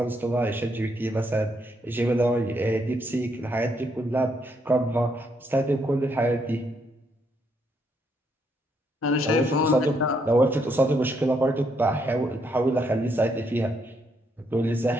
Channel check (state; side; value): normal; both; correlation 0.74